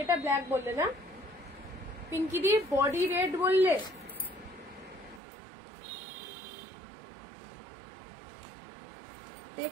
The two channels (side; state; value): left; drops out; at 5.2 s